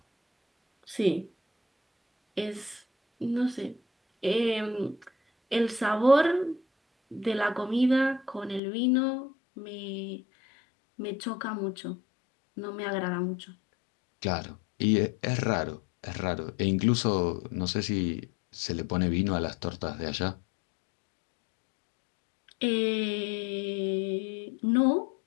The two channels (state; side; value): drops out; right; at 8.6 s